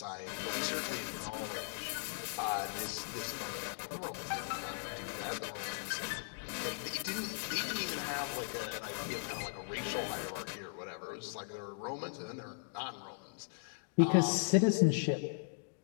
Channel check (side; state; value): right; silent; digital silence